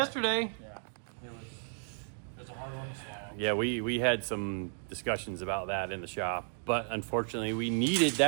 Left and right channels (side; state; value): left; silent; digital silence